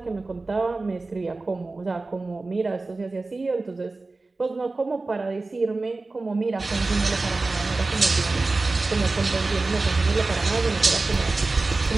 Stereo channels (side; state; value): left; quieter; 3.4 dB